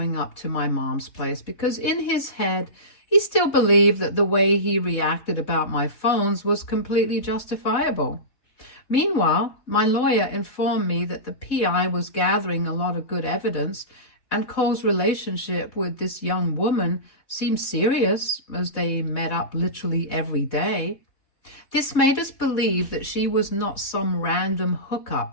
up to my mom's place because in his head, he still believed that the way he reacted about my phones was completely justifiable. Meanwhile, my lawyer informed me that the PI was gathering a lot of good evidence, and Cole's relationship with this young woman seemed serious as they met up literally every day. This made us believe that she was not some random hookup,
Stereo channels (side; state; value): right; late; 4.0 ms